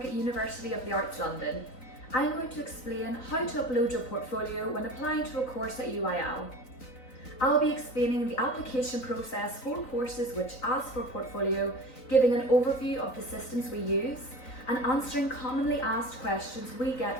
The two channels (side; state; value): right; late; 3.9 ms